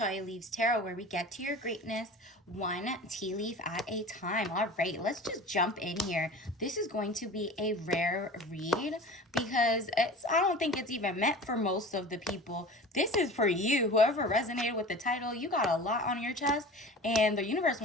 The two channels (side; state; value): both; normal; correlation 0.38